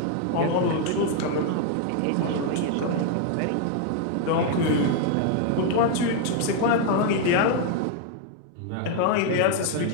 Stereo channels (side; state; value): both; different; correlation 0.00